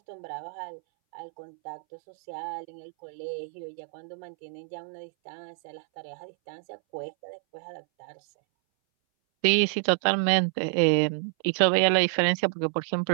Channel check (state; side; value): silent; left; 59 dB below the other